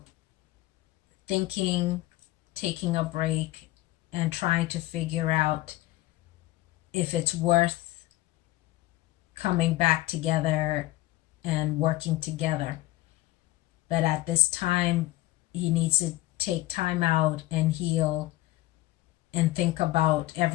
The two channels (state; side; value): quieter; right; 17.8 dB